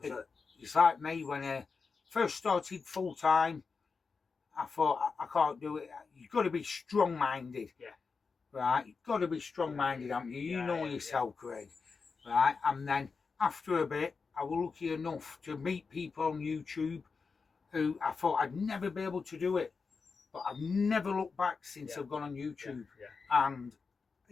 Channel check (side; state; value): right; quieter; 4.9 dB